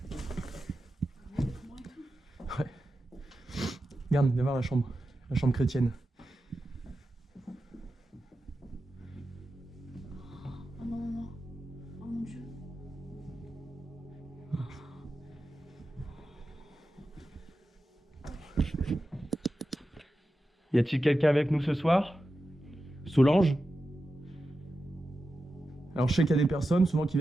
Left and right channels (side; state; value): both; normal; correlation 0.91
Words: Ouais. Regarde, viens voir la chambre chrétienne. Oh non, non, non. Oh mon Dieu. Y a-t-il quelqu'un avec nous ce soir? Solange? Alors je sais qu'il y a des personnes souvent qui